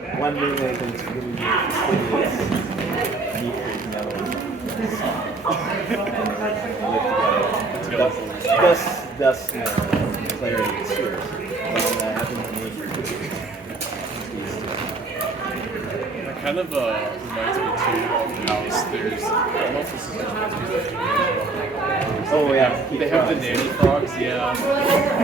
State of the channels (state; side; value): quieter; left; 3.5 dB